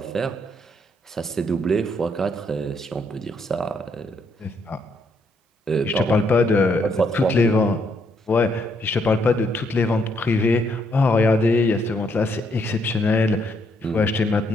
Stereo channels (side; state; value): both; normal; correlation 0.73